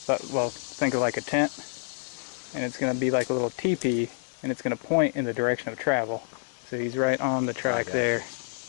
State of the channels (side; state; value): right; silent; digital silence